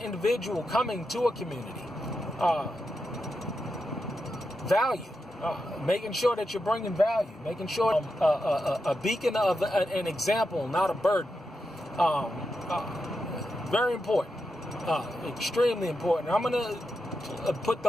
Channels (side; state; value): both; normal; correlation 0.87